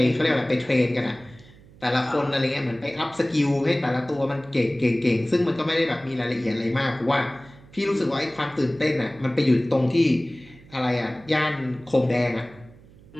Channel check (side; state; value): right; noise; hum, 24 dB below the sound